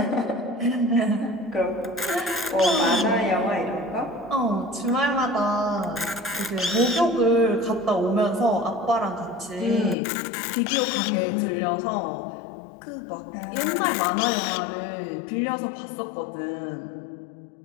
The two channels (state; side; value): drops out; right; at 10.0 s